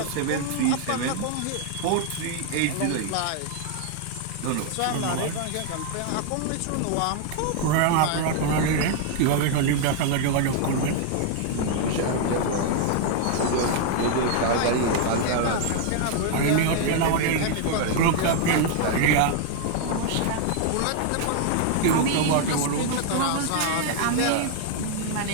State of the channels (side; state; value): both; different; correlation 0.00